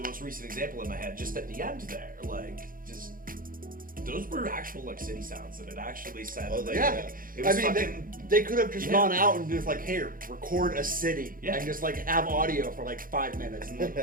most recent example in my head, just at the end there, like just those were actual like city sounds, and it actually said. Oh, like, yeah. It was I mean, fucking. they could have just Yeah. gone out and just like, here, record a city, Yeah. and just like have audio for like 5 minutes, and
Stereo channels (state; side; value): late; left; 0.41 ms